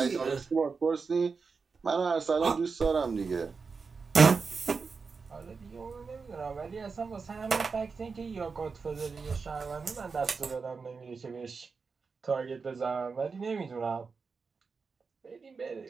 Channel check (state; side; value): quieter; left; 4.9 dB